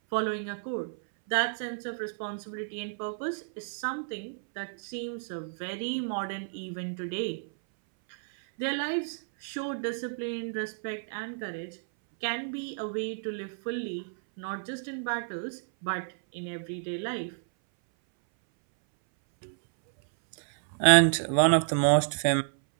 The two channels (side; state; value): left; silent; 58 dB below the other